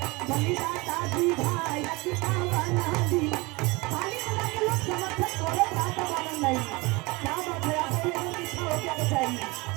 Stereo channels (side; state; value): left; quieter; 24.6 dB